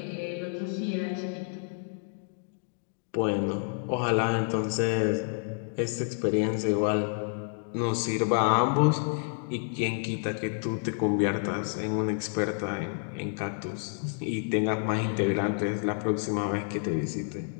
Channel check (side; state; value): right; silent; 55 dB below the other